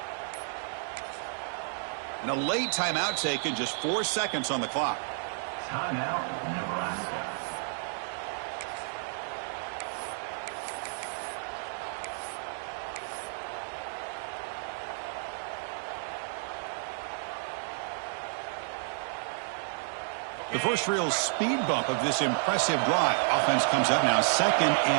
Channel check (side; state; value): left; silent; 57 dB below the other